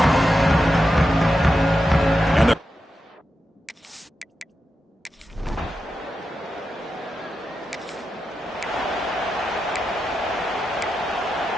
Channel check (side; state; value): both; normal; correlation 0.88